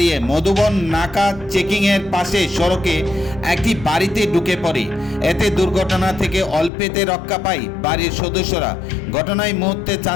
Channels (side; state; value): right; drops out; at 6.7 s